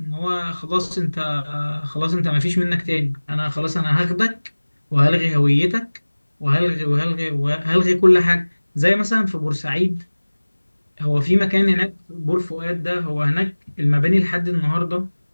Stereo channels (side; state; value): both; inverted; correlation -1.00